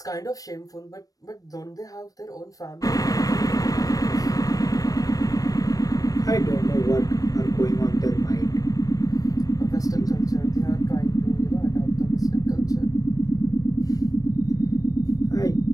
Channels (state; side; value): late; right; 0.18 ms